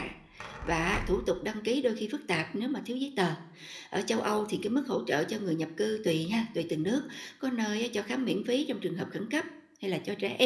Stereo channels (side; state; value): both; identical; correlation 1.00